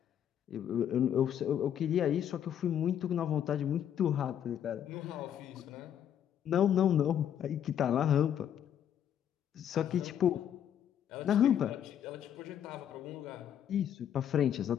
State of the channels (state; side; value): quieter; right; 9.7 dB